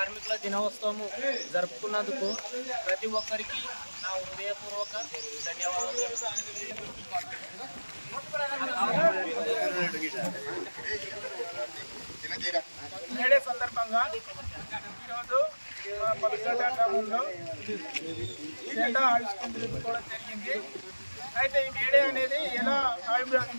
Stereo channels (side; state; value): both; inverted; correlation -1.00